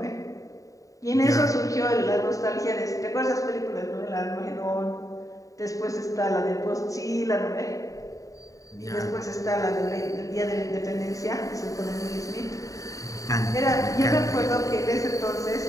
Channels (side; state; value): right; late; 0.16 ms